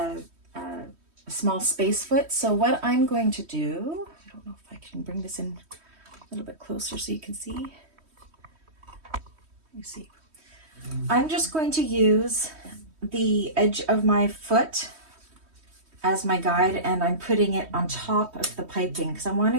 a small space foot. So what I'm going to do, I don't know if I can bring this in a little bit closer so you can see. Let me see. I'm just going to use the edge of my foot as my guide, and I'm putting it on top of the piping because I want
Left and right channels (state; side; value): late; left; 3.1 ms